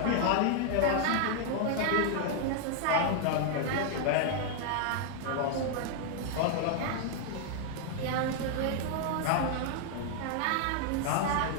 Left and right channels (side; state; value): both; different; correlation 0.00